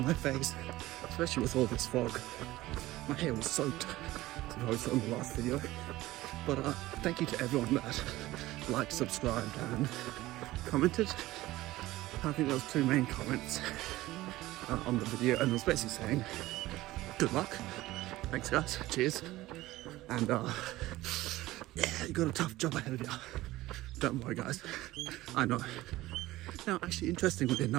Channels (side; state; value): left; quieter; 17.3 dB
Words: my face, especially with all this fog. My hair was soaked, as I saw in the last video. But thank you to everyone that liked, subscribed and commented. I think there was 2 main comments on the video, and it was basically saying, good luck, thanks guys, cheers. And yeah, you got a tough job ahead of you. Don't worry guys, I know. Now actually, interestingly